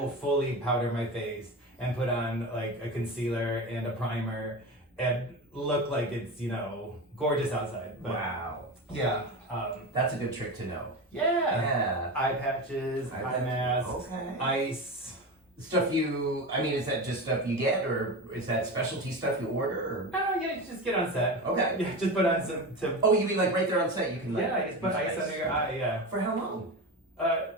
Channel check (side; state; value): both; normal; correlation 0.24